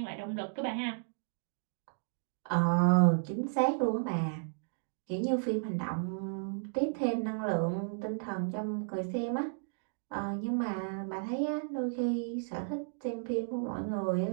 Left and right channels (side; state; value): left; silent; digital silence